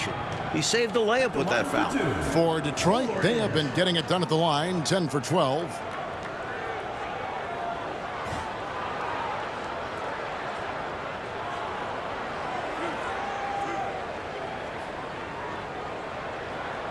He saved the layup with that foul. For Detroit, they have been getting it done at the line, 10 for 12.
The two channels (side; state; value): both; identical; correlation 1.00